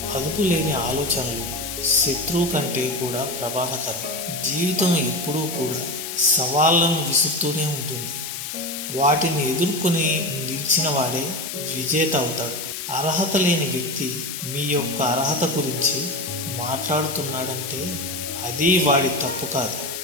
అదుపు లేని ఆలోచనలు శత్రువు కంటే కూడా ప్రమాదకరం. జీవితం ఎప్పుడూ కూడా సవాళ్లను విసురుతూనే ఉంటుంది. వాటిని ఎదుర్కొని నిలిచిన వాడే విజేత అవుతాడు. అర్హత లేని వ్యక్తి మీ యొక్క అర్హత గురించి మాట్లాడుతున్నాడంటే అది వాడి తప్పు కాదు,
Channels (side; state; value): left; noise; hiss, 6 dB below the sound